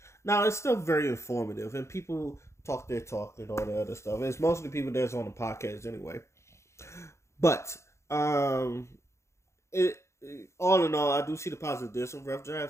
Now it's still very informative, and people talk their talk and all the other stuff. It's mostly people that's on the podcast anyway. But it all in all, I do see the positive. There's some rough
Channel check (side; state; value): right; late; 0.14 ms